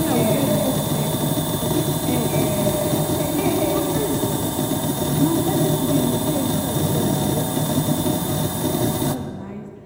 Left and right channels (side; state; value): both; identical; correlation 1.00